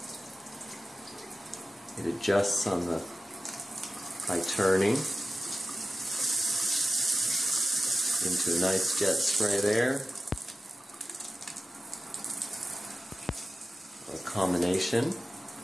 It adjusts on the by turning into a nice jet spray there. A combination.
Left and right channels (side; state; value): both; normal; correlation 0.94